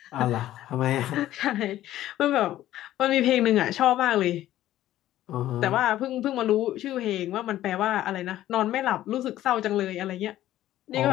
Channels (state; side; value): quieter; right; 13.6 dB